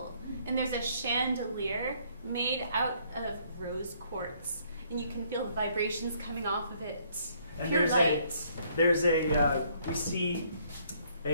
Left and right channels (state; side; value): inverted; both; correlation -0.66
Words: And there's a chandelier made out of rose quartz, and you can feel the vibrations coming off of it. And Pure light. we see